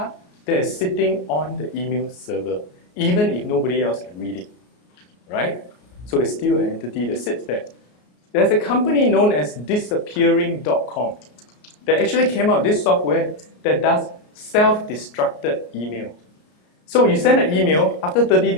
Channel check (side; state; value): right; late; 33 ms